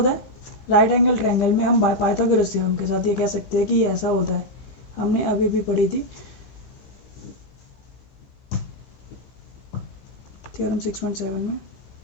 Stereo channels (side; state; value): right; late; 15 ms